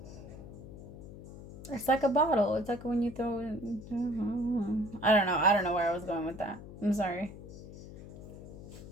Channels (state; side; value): noise; left; hum, 14 dB below the sound